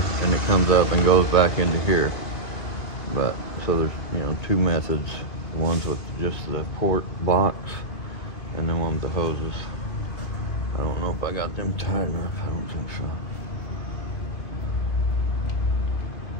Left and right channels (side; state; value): right; late; 2.5 ms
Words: and it comes up and goes back into here. But so there's, you know, 2 methods: the ones with just the port box, and then one with the hoses. I don't know if I got them tight enough. I don't think so.